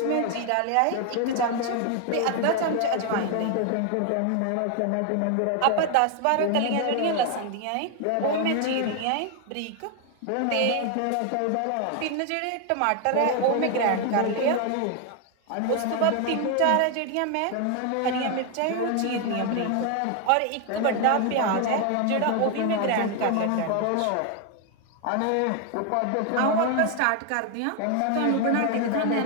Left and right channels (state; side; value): different; both; correlation 0.01